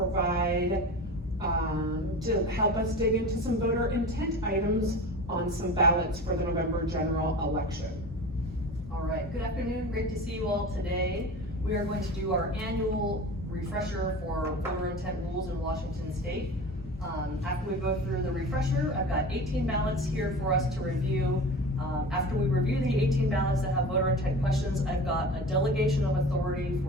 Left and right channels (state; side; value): normal; both; correlation 0.34